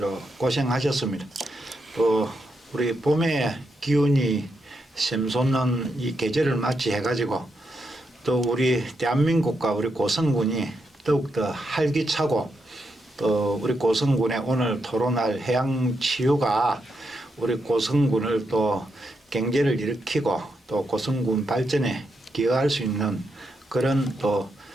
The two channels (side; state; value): both; normal; correlation 0.83